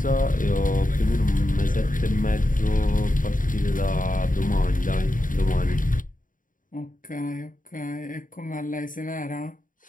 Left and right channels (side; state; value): right; late; 0.39 ms